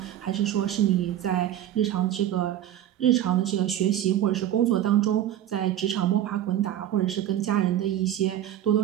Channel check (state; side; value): quieter; left; 11.8 dB